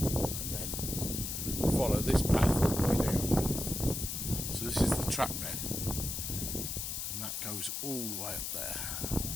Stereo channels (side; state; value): left; noise; hiss, 3 dB below the sound